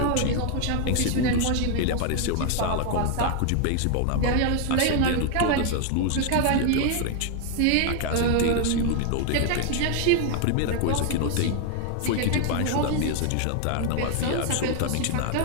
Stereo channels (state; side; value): different; both; correlation 0.00